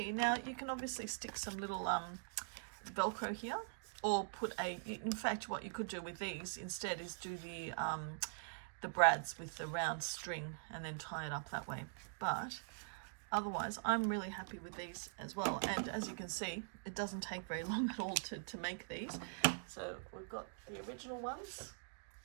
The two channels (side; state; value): left; silent; digital silence